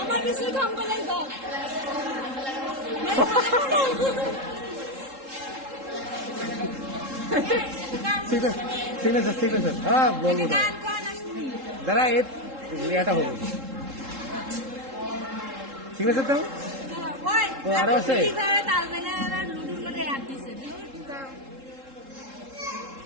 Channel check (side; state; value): left; late; 3.7 ms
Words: আমার বেশি কাম করে দাও ঠিক আছে ঠিক আছে হ্যাঁ বলবো দাঁড়া এটা হবো ঠিক আছে তো ও আরো আছে